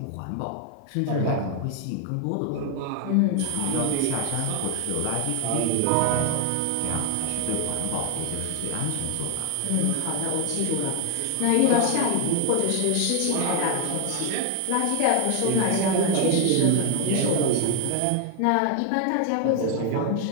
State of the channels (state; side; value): different; both; correlation 0.00